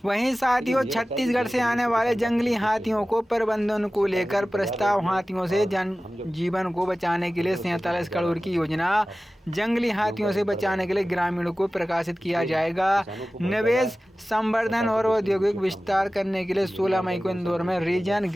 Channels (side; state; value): both; normal; correlation 0.96